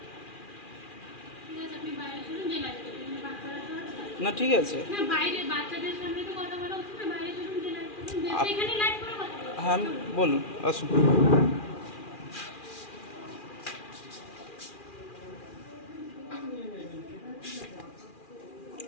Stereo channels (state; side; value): late; right; 2.4 ms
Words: ঠিক আছে, আপনি বাইরে চলুন, যে লাইট করুন। বাচ্চারা তো আছে। না ঠিক আছে। না, বাইরে বাচ্চাদের সামনে তো কথা বলা উচিত না। বাইরে চলুন, যে লাইট করুন, যে সেখানে লাইট করে কথা বলুন। হ্যাঁ বলুন, আসুন।